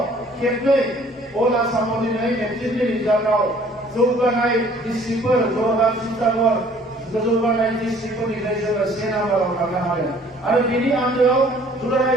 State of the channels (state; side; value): normal; both; correlation 0.56